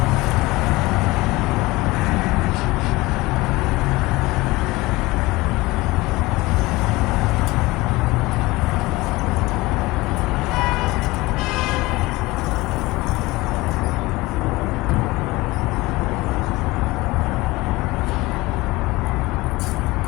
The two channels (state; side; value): quieter; right; 20.9 dB